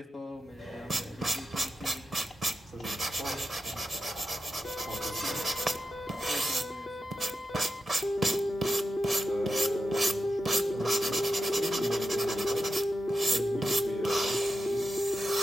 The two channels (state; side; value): normal; both; correlation 0.89